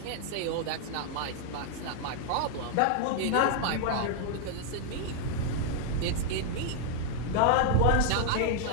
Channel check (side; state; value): both; different; correlation 0.00